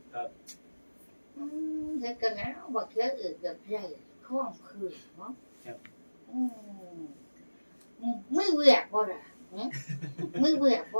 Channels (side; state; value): both; inverted; correlation -1.00